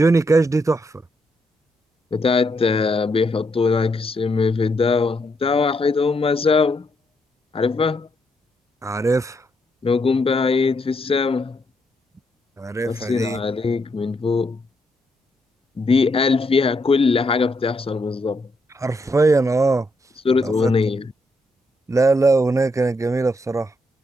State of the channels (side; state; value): both; normal; correlation 0.77